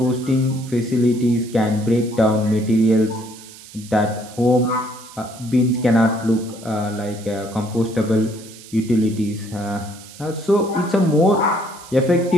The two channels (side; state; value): right; noise; hiss, 19 dB below the sound